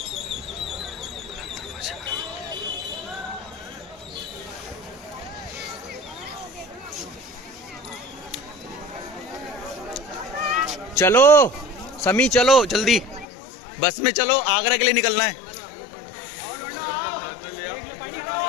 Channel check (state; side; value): drops out; right; at 13.2 s